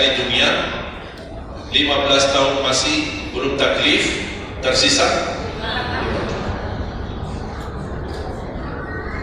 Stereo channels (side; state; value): both; identical; correlation 1.00